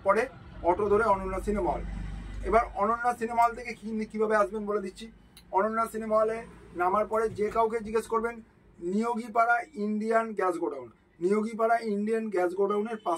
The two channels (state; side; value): identical; both; correlation 1.00